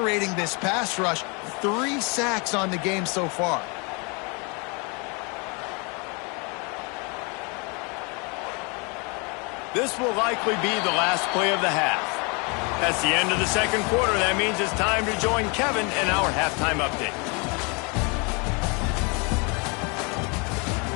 this pass rush. 3 sacks on the game so far. This will likely be the last play of the half. That's the end of the second quarter. That means it's time to join Kevin in our halftime update.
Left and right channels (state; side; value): quieter; right; 31.8 dB